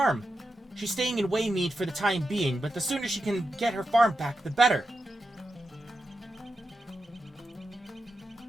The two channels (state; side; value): normal; both; correlation 0.88